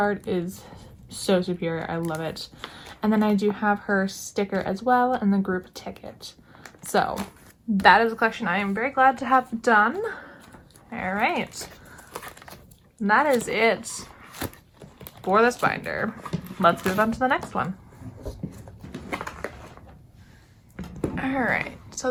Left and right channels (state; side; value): identical; both; correlation 1.00